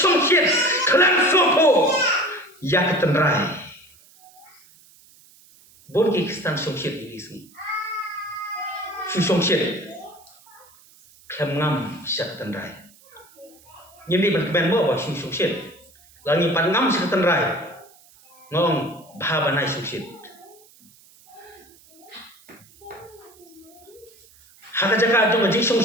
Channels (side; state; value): right; noise; hiss, 27 dB below the sound